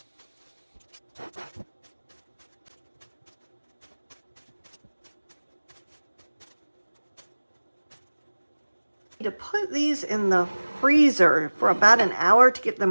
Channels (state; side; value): inverted; both; correlation -1.00